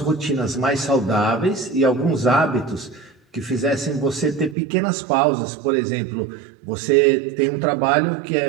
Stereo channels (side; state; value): left; drops out; at 4.5 s